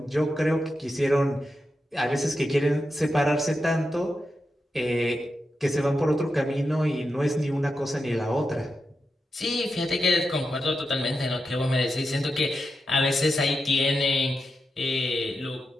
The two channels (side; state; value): both; normal; correlation 0.88